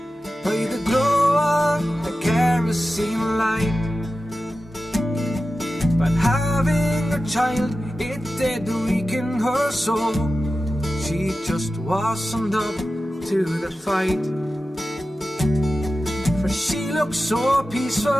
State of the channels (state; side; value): normal; both; correlation 0.93